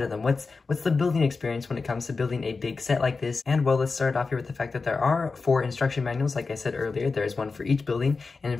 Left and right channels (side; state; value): right; quieter; 4.3 dB